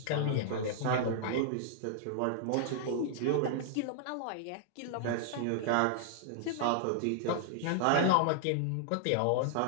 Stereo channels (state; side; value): different; both; correlation -0.01